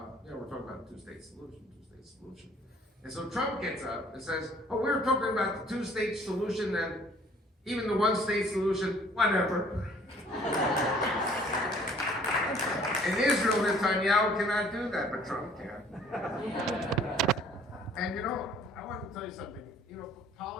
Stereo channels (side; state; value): both; normal; correlation 0.56